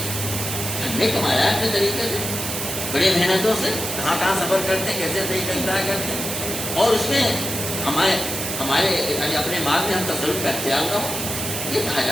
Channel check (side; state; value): right; noise; hiss, 4 dB below the sound